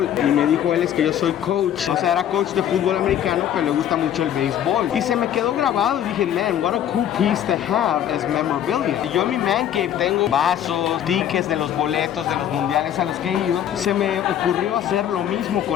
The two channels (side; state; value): right; quieter; 10.3 dB